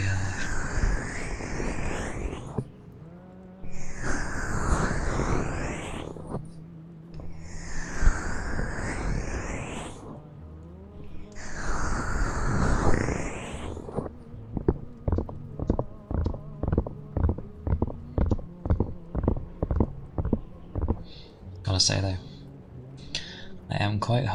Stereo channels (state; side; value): identical; both; correlation 1.00